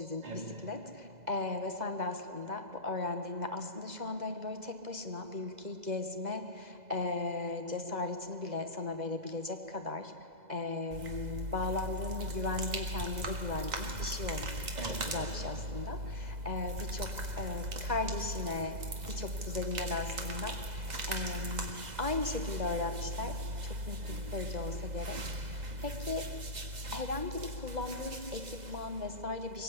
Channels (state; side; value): late; left; 2.0 ms